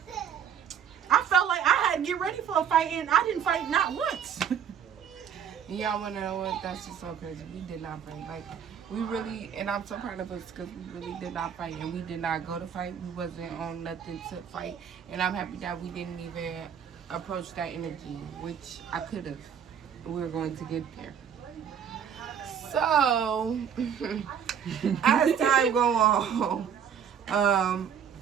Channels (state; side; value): quieter; left; 8.1 dB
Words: I felt like I had to get ready for a fight, and I didn't fight not once. Y'all want to know what? That's just so crazy. We did not fight. Like, we really, and I'm so proud of us because we really did not fight, and we did not go to fight. We wasn't on nothing to fight, and I'm happy that we didn't even approach that energy, which I could have. We were going to get there. So, as time go on,